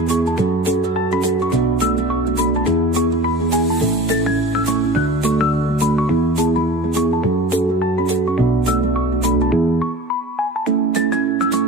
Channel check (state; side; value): normal; both; correlation 0.37